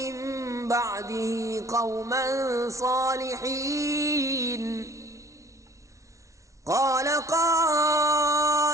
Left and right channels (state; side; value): late; left; 0.15 ms